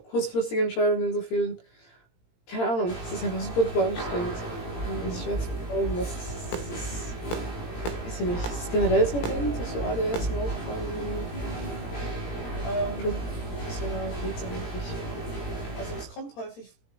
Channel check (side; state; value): right; late; 17 ms